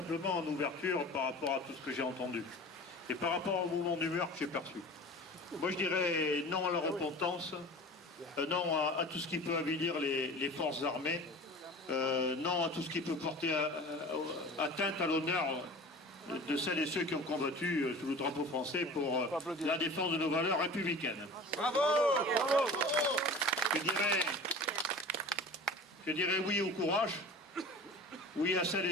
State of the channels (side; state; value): both; normal; correlation 0.38